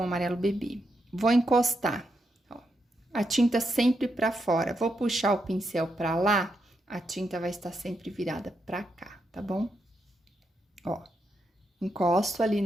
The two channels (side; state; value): both; normal; correlation 0.82